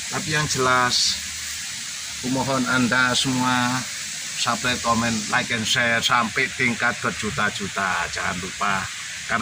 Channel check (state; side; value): identical; both; correlation 1.00